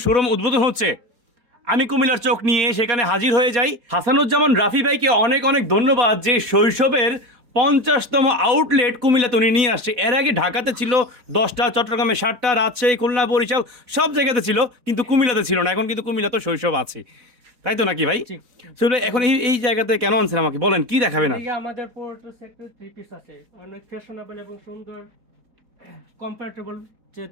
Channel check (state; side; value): late; left; 4.0 ms